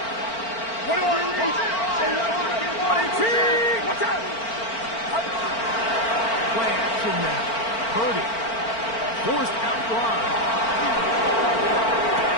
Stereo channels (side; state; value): right; late; 4.4 ms